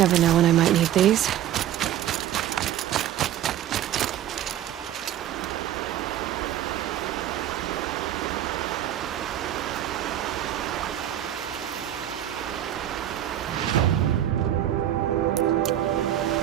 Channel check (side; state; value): left; quieter; 11.7 dB